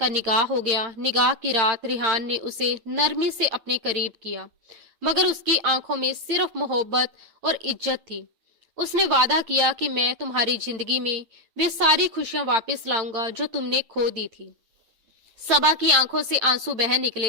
निगाह हो गया। निगाह की रात रिहान ने उसे नरमी से अपने करीब किया, मगर उसकी आंखों में सिर्फ मोहब्बत और इज्जत थी। उसने वादा किया कि मैं तुम्हारी जिंदगी में वे सारी खुशियां वापस लाऊंगा जो तुमने खो दी थी। सबा की आंखों से आंसू बह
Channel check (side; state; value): left; late; 9.0 ms